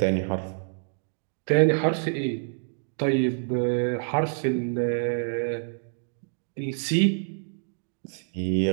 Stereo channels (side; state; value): left; silent; digital silence